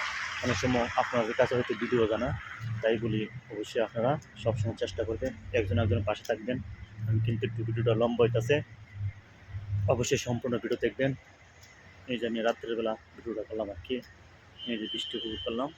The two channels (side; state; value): both; identical; correlation 1.00